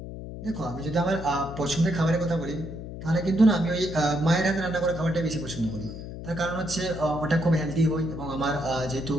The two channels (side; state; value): left; noise; hum, 10 dB below the sound